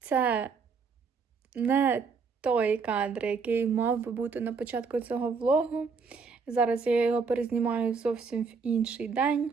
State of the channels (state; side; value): quieter; left; 5.2 dB